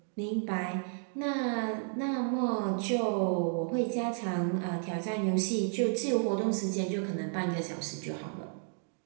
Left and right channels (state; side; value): silent; left; 56 dB below the other